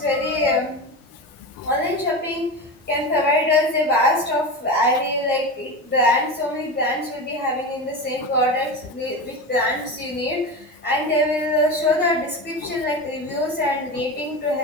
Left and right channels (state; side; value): normal; both; correlation 0.24